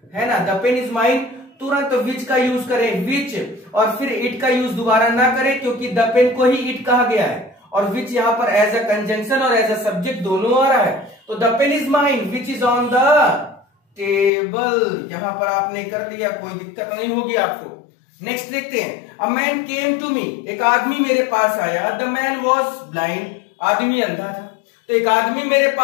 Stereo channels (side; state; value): right; drops out; at 14.3 s